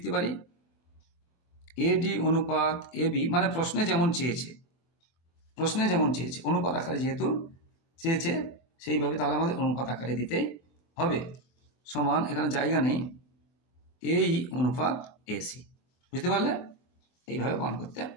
পারি, এডি অনুপাত এবি, মানে প্রশ্নে যেমন চেয়েছে, প্রশ্নে যেমন চেয়েছে অনুপাত আকারে যেহেতু চেয়েছে সেইভাবে তাহলে আমাদের অনুপাত আকারে দিতেই হবে। সমান, এখানে জায়গা নেই, এই অনুপাত এসি। বুঝতে পারলে? এইভাবে মান করতে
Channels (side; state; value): right; late; 24 ms